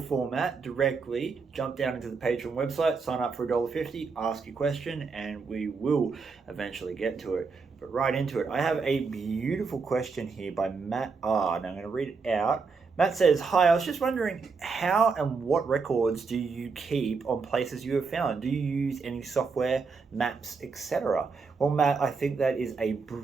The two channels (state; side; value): quieter; left; 4.8 dB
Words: directly jump down into the Patreon website, sign up for $1.50, ask your question, and we will eventually get to it. But right into it, I have a beautiful question here by Matt R. And I'm going to read it out. Matt says, "Hi, I was just wondering how and what records do you keep on places you have found? Do you use any software, maps, etc.?" Well, Matt, I think that is a